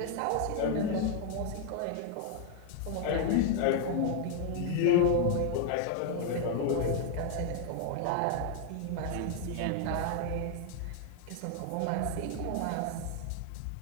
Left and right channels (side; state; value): both; different; correlation 0.00